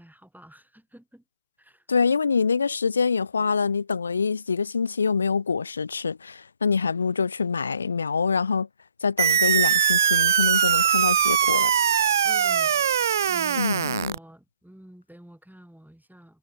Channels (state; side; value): inverted; both; correlation -0.66